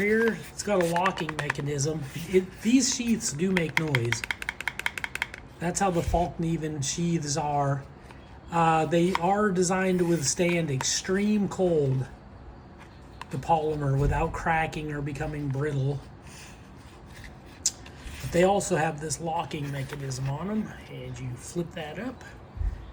It's got a locking mechanism. These sheaths do make noise. That's how the Fallkniven sheaths are. They are designed to withstand extreme cold, the polymer, without cracking or becoming brittle. But they also have this locking mechanism on them, and you flip that up.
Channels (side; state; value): both; identical; correlation 1.00